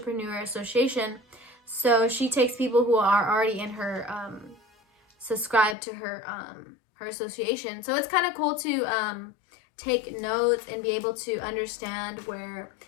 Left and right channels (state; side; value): drops out; right; at 5.8 s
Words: Association. So she takes people who are already in her subscribe to her association. So it's kind of cool to take notes and be able to understand where